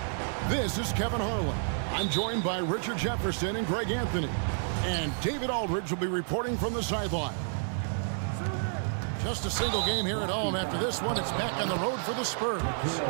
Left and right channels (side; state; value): left; silent; digital silence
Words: This is Kevin Harlan. I'm joined by Richard Jefferson and Greg Anthony. And David Aldridge will be reporting from the sideline. Just a single game here at home. After this one, it's back on the road for the Spurs.